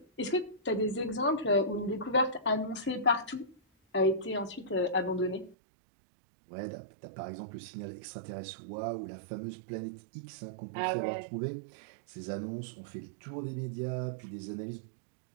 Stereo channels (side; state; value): left; drops out; at 5.6 s